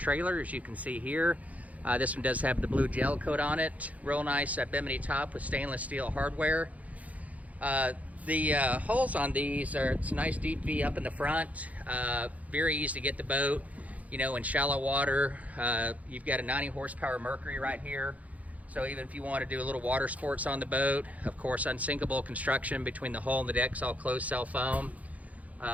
as you can see here. This one does have the blue gel coat on it. Real nice bimini top with stainless steel hardware. The holes on these are, it's a nice deep V up in the front. Very easy to get the boat, you know, in shallow water. You've got a 90 horsepower Mercury right here. So even if you want to do a little water sports on the boat, of course, unsinkable construction between the hull and the deck's all closed cell foam.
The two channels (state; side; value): late; left; 0.071 ms